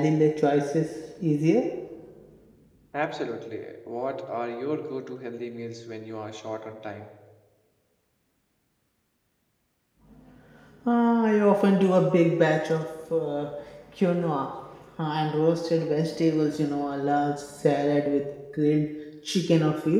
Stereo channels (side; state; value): both; identical; correlation 1.00